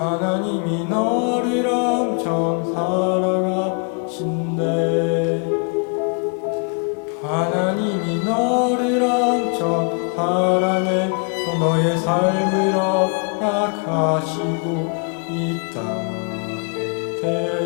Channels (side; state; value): right; quieter; 38.7 dB